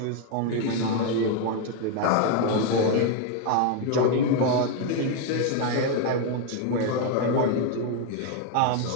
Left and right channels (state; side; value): different; both; correlation 0.01